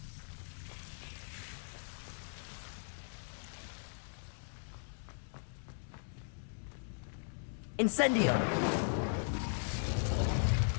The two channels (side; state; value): right; silent; digital silence